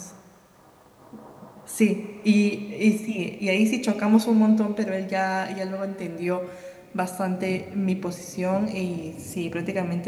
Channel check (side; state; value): both; identical; correlation 1.00